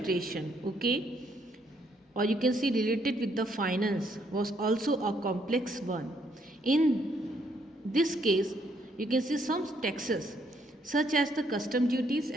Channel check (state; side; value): normal; both; correlation 0.71